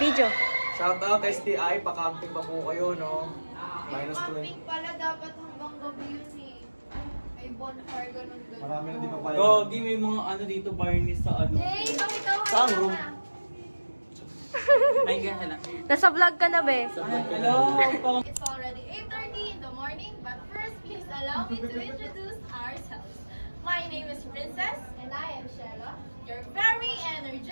Shout out STI, pa-camping pa po kayo, no? Minus 20. Pala dapat hanggang gabi yun eh. May bonfire, ganun. Marami na di pa pala. Gogi, may mga ano dito, barnis sa ano. Hey, bakit ako? Saan room? Ay, gano'n lang. Nasa vlog ka na, be. Hello, pang... It's already 8:30 in the morning, but first please allow me to introduce ourselves. My name is Princess, and I am Shella, your very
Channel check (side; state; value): both; inverted; correlation -1.00